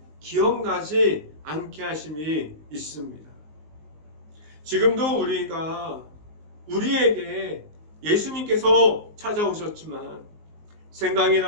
기억나지 않게 하심이 있습니다. 지금도 우리에게 예수님께서 찾아오셨지만 생각이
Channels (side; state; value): left; late; 19 ms